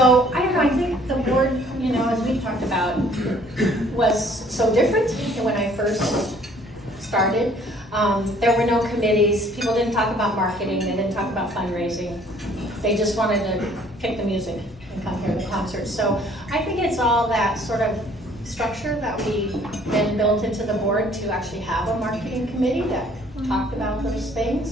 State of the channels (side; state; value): both; normal; correlation 0.58